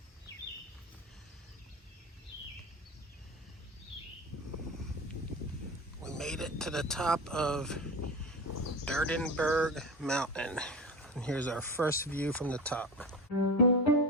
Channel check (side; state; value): both; normal; correlation 0.27